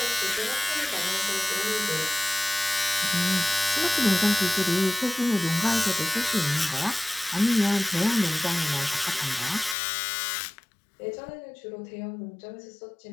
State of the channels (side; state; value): right; drops out; at 9.8 s